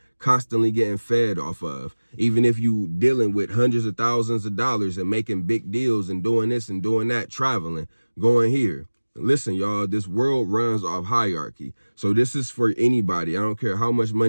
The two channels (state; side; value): inverted; both; correlation -1.00